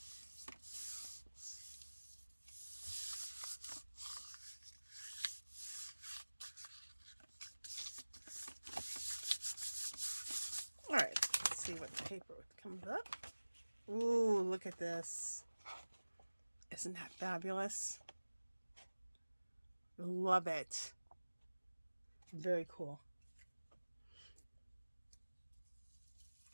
All right, let's see what the paper comes up. Ooh, look at this. Isn't that fabulous? Love it. Very cool.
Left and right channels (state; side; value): inverted; both; correlation -1.00